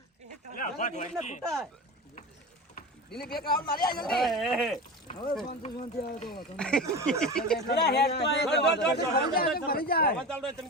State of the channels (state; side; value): normal; both; correlation 0.28